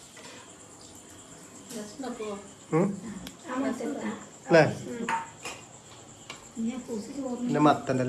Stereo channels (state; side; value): identical; both; correlation 1.00